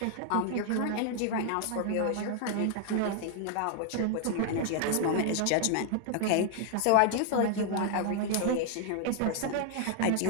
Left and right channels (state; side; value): different; both; correlation 0.00